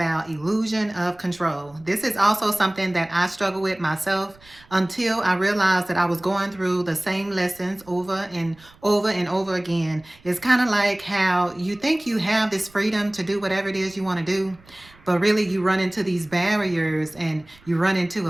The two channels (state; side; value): noise; right; rumble, 27 dB below the sound